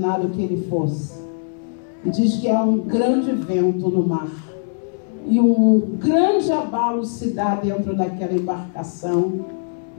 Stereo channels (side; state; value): right; silent; digital silence